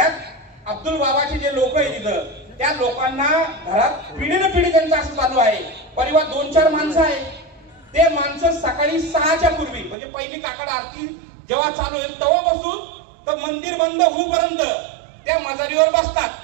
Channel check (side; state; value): left; drops out; at 10.0 s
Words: अब्दुल बाबाचे जे लोक आहे तिथं, त्या लोकांना घरात पिढीनं पिढी त्यांचं असं चालू आहे. परिवार 2-4 माणसं आहे, ते माणसं सकाळी 6च्या पूर्वी म्हणजे पहिली काकड आरती जेव्हा चालू होईल तेव्हापासून तर मंदिर बंद होईपर्यंत त्या मजारीवर बसतात।